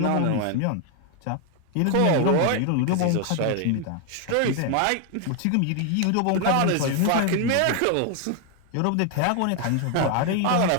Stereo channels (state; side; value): different; both; correlation 0.01